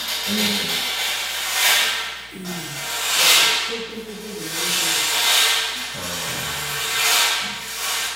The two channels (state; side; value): noise; left; hum, 26 dB below the sound